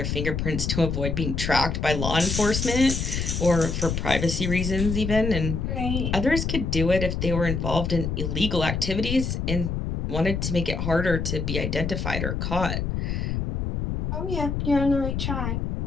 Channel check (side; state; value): left; noise; rumble, 2 dB below the sound